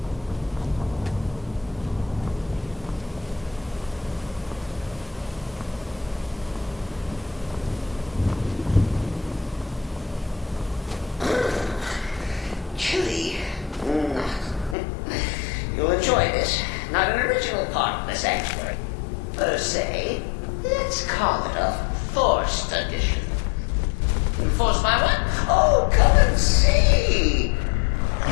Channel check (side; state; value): right; drops out; at 14.8 s